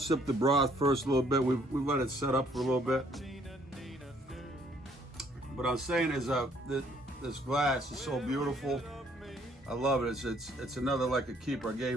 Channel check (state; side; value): normal; both; correlation 0.64